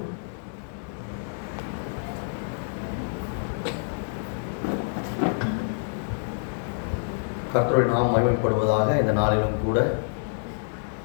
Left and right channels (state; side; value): silent; right; digital silence